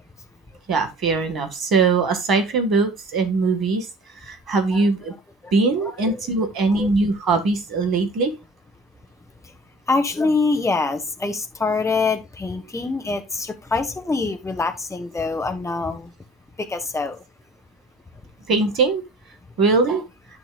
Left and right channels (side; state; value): both; normal; correlation 0.47